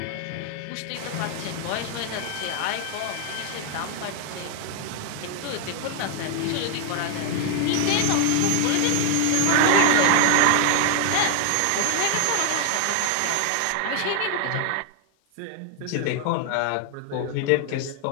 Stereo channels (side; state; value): both; different; correlation 0.01